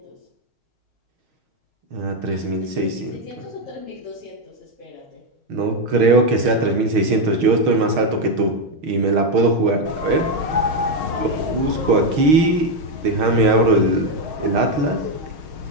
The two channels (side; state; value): left; late; 6.4 ms